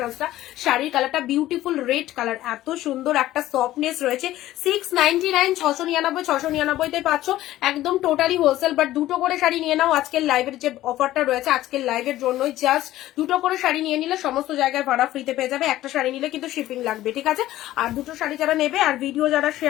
শাড়ির কালারটা বিউটিফুল রেড কালার, এত সুন্দর একটা সফটনেস রয়েছে। 699, 699 পাচ্ছ, একদম টোটালি হোলসেল। বাট দুটো করে শাড়ি নিয়ে নাও, আজকের লাইভের যে অফারটা রয়েছে আজকের লাইভের জন্যই, জাস্ট দুটো করে শাড়ি নিয়ে নিলে সমস্ত জায়গায় ভাড়া ফ্রিতে পেয়ে যাবে। একটা শাড়ি নিলে কিন্তু শিপিং লাগবে, ঠিক আছে। আর দুটো শাড়ি যারা নেবে আর ভিডিও যারা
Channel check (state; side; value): quieter; right; 14.8 dB